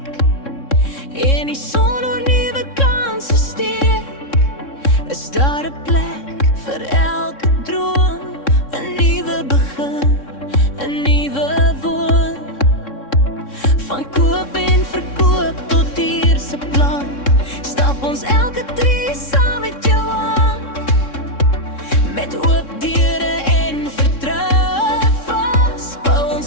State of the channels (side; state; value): right; late; 3.6 ms